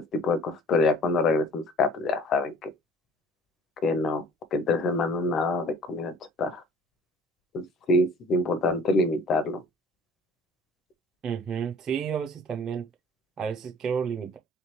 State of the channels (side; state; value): both; normal; correlation 0.49